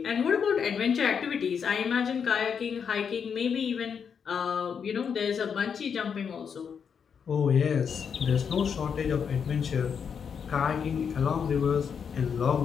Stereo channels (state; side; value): quieter; right; 6.9 dB